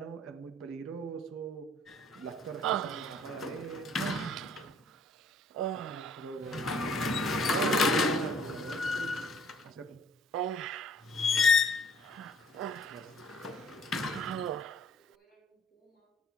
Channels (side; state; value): both; normal; correlation 0.56